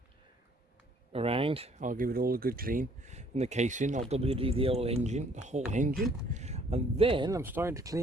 around. I'll give it all a good clean in the casing. I'll WD the old engine, the whole engine, and then I'm starting to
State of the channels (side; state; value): both; normal; correlation 0.60